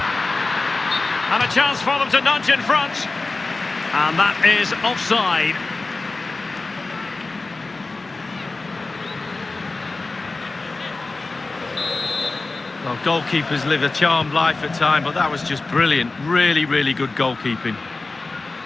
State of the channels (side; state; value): right; quieter; 3.5 dB